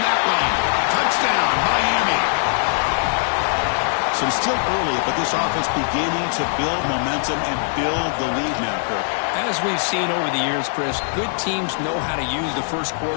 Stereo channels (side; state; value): right; silent; digital silence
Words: that one. Touchdown, Miami. So it's still early, but this offense beginning to build momentum and build the lead now, Kirk. As we've seen over the years, Chris, good teams know how to use the 1st